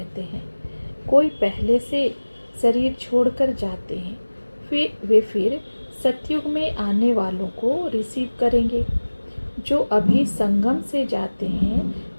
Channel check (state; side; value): inverted; both; correlation -1.00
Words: हैं। कोई पहले से शरीर छोड़कर जाते हैं, फिर सतयुग में आने वालों को रिसीव करेंगे। जो अभी संगम से जाते हैं